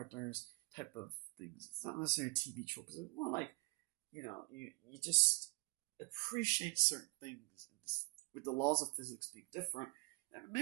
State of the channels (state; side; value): quieter; left; 28.6 dB